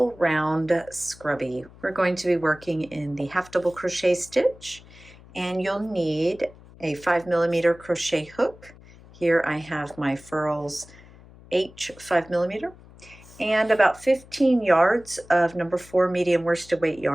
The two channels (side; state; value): left; noise; hum, 22 dB below the sound